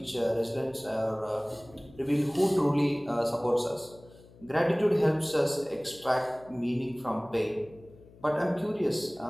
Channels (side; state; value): left; noise; hum, 23 dB below the sound